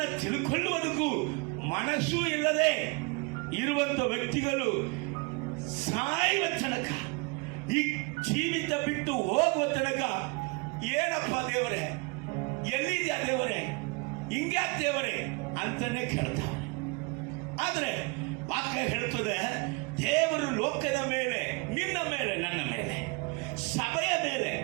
ತಿಳ್ಕೊಳ್ಳುವುದಕ್ಕೂ ಮನಸ್ಸು ಇಲ್ಲದೆ ಇರುವಂತ ವ್ಯಕ್ತಿಗಳು ಸಾಯುವ ತನಕ, ಈ ಜೀವಿತ ಬಿಟ್ಟು ಹೋಗುವ ತನಕ ಏನಪ್ಪ ದೇವರೇ, ಎಲ್ಲಿದ್ಯಾ ದೇವರೇ, ಹಿಂಗ್ಯಾ ದೇವರೇ ಅಂತಾನೆ ಕೇಳ್ತಾರೆ. ಆದ್ರೆ ವಾಕ್ಯ ಹೇಳ್ತದೆ, ದೇವರು ಲೋಕದ ಮೇಲೆ, ನಿನ್ನ ಮೇಲೆ, ನನ್ನ ಮೇಲೆ, ಸಭೆಯ ಮೇಲೆ,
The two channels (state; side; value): quieter; left; 27.9 dB